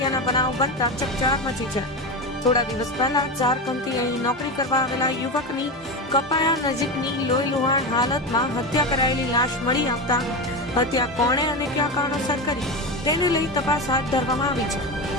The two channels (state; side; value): normal; both; correlation 0.19